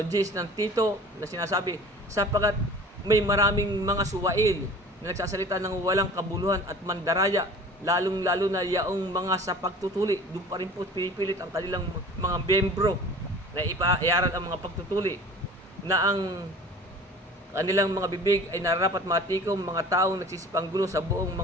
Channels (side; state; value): both; normal; correlation 0.43